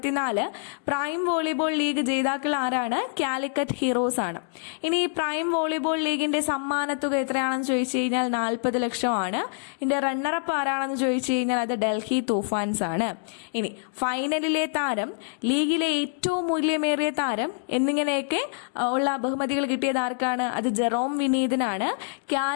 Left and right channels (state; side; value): silent; right; digital silence